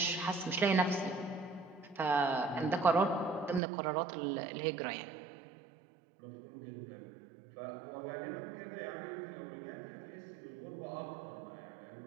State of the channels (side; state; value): left; drops out; at 3.6 s